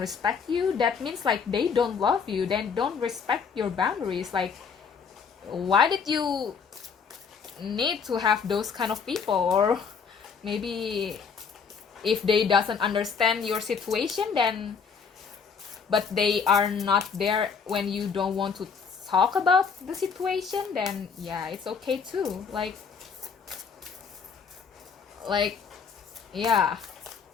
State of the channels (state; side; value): quieter; right; 6.0 dB